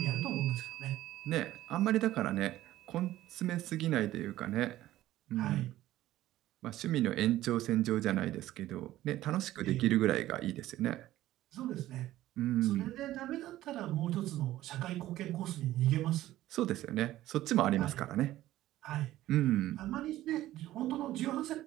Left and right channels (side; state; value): left; quieter; 14.8 dB